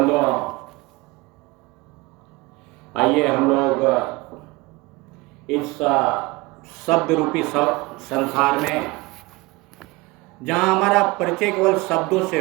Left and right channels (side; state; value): left; quieter; 22.7 dB